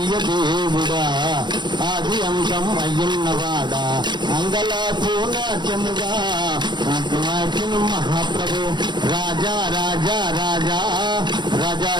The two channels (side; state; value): left; late; 0.22 ms